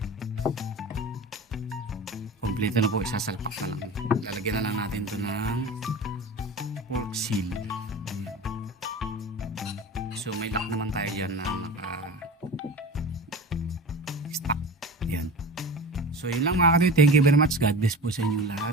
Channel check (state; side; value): normal; both; correlation 0.32